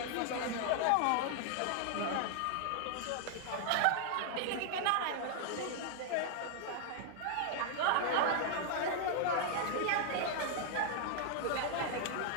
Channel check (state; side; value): different; both; correlation 0.00